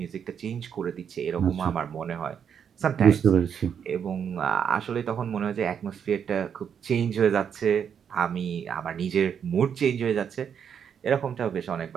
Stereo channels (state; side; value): quieter; left; 7.8 dB